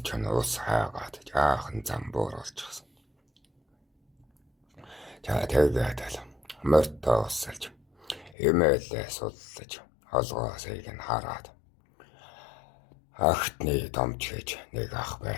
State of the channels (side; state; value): right; drops out; at 8.3 s